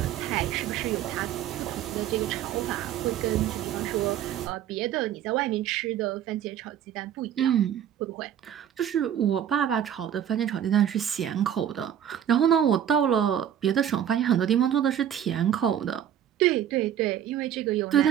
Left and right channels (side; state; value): left; quieter; 10.1 dB